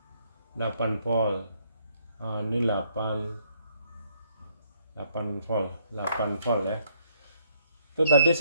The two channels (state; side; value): inverted; both; correlation -0.69